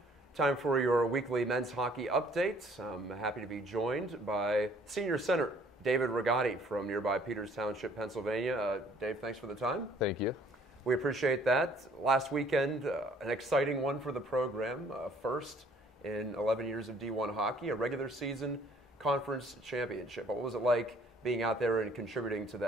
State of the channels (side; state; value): both; normal; correlation 0.59